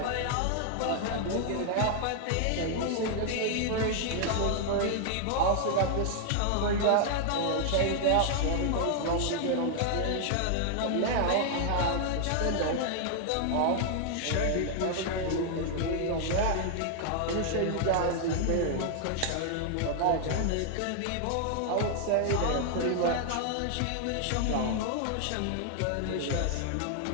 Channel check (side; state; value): both; different; correlation 0.00